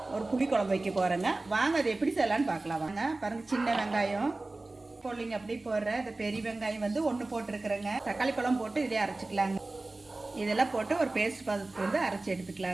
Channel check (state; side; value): quieter; left; 3.1 dB